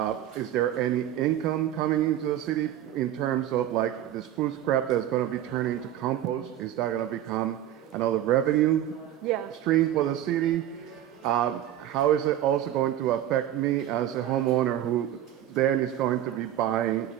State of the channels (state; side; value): quieter; left; 11.8 dB